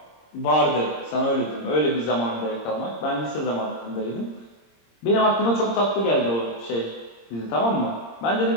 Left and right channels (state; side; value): late; right; 26 ms